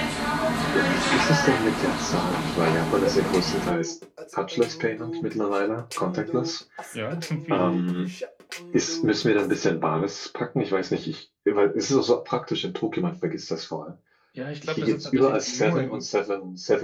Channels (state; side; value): identical; both; correlation 1.00